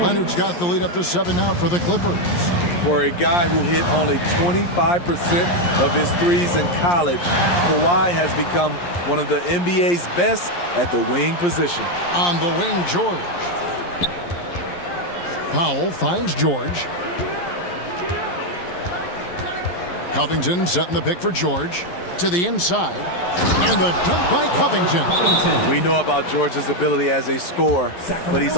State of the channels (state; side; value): late; right; 11 ms